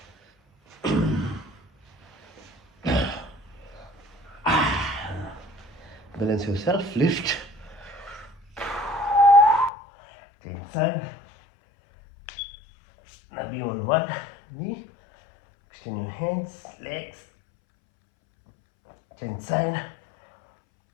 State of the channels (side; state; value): right; drops out; at 9.7 s